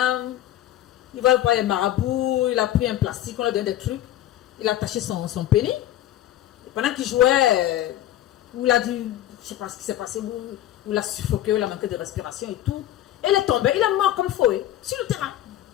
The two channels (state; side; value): quieter; right; 13.0 dB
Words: Il va prendre les marabouts. Il a pris un plastique, on lui a donné des trucs. Il a attaché son pénis. Et pendant qu'il jouait, il a dit, je ne sais pas ce qui s'est passé, où il a suffoqué, il a manqué de respiration et tout. Et il est tombé, il est mort comme fouet, sur le terrain.